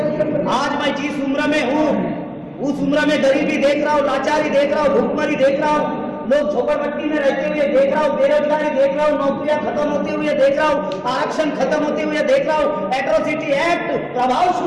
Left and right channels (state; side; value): identical; both; correlation 1.00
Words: आज मैं जिस उम्र में हूँ, उस उम्र में गरीबी देख रहा हूँ, लाचारी देख रहा हूँ, भूखमरी देख रहा हूँ, लोग झोपड़पट्टी में रहते हुए देख रहा हूँ, बेरोजगारी देख रहा हूँ, नौकरियां खत्म होते हुए देख रहा हूँ, आरक्षण खत्म होते हुए देख रहा हूँ, एट्रोसिटी एक्ट प्रभाव